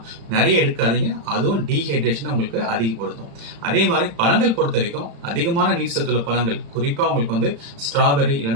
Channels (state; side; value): late; left; 35 ms